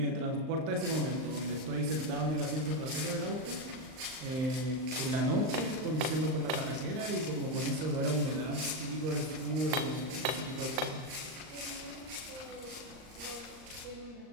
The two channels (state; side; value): late; left; 38 ms